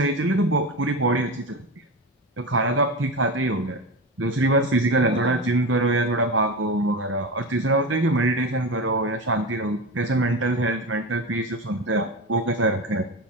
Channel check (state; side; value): normal; both; correlation 0.22